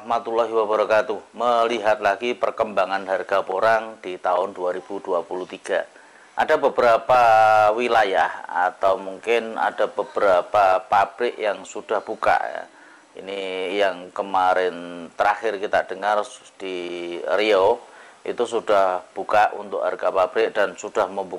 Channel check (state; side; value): identical; both; correlation 1.00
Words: wabarakatuh. Melihat lagi perkembangan harga porang di tahun 2023. Ada beberapa wilayah atau mungkin ada beberapa pabrik yang sudah buka ya. Ini yang kemarin terakhir kita dengar di Riau itu sudah buka untuk harga pabrik dan sudah